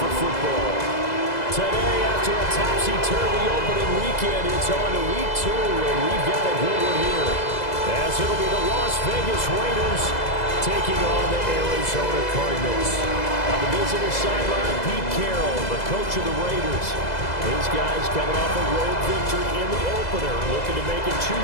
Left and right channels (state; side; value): late; right; 2.0 ms